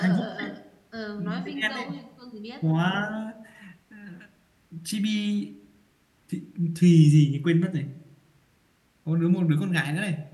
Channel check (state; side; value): identical; both; correlation 1.00